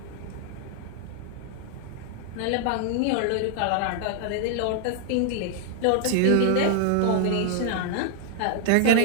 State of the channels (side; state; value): both; different; correlation 0.00